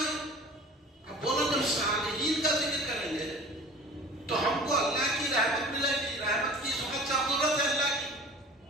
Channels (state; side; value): normal; both; correlation 0.43